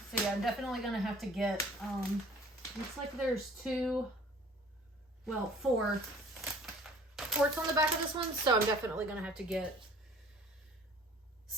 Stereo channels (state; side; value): normal; both; correlation 0.51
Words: yeah, I'm definitely gonna have to get, looks like there's four ports on the back of this one, so I'm definitely gonna have to get